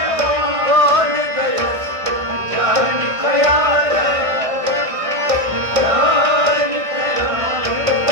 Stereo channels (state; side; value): late; left; 1.6 ms